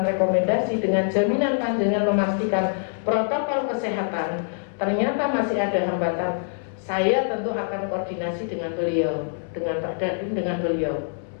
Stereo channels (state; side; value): silent; right; digital silence